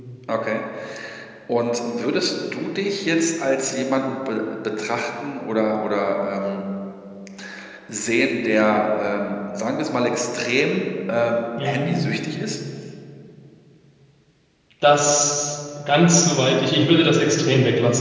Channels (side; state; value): both; identical; correlation 1.00